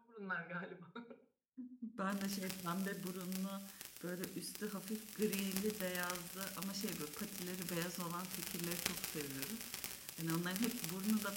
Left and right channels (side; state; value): both; identical; correlation 1.00